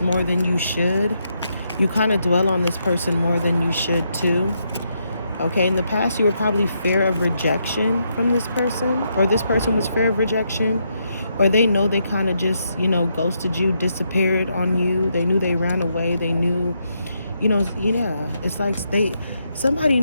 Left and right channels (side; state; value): both; inverted; correlation -0.79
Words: more than you should. You kind of dwell on this person more than you should too. Okay, in the past, you were probably fear of rejection from this person, or this person was fear of rejection, or they know they kind of just, you know, ghosted you, disappeared on you. They knew they ran away. They knew, you know, yeah. It's like somebody